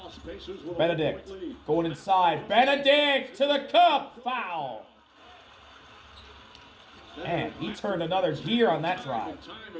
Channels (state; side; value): identical; both; correlation 1.00